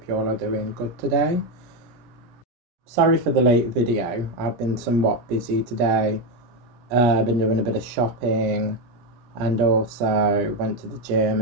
you all are doing good today. Sorry for the late video. I've been somewhat busy today. I've been doing a bit of shopping and also went to the gym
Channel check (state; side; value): late; left; 17 ms